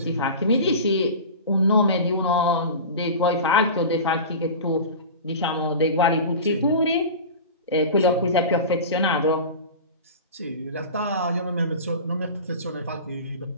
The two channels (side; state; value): both; inverted; correlation -0.32